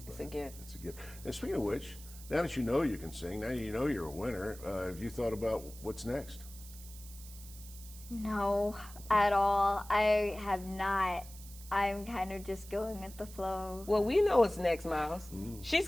it. It's a gift. It's a gift. And speaking of which, now that you know you can sing, now you know you're a winner, have you thought about what's next? No, at all. I have not. I'm kind of just going with the flow. Well, we know what's next, Miles. She's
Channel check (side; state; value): right; noise; hiss, 17 dB below the sound